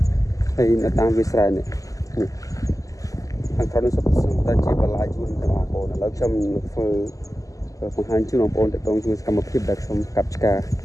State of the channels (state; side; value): late; right; 0.16 ms